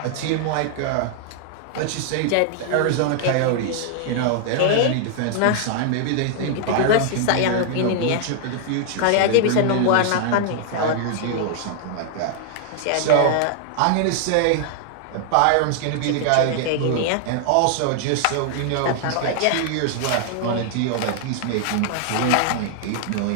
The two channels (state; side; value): different; both; correlation 0.00